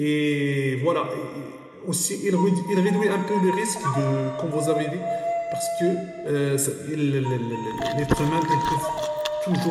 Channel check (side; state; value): both; identical; correlation 1.00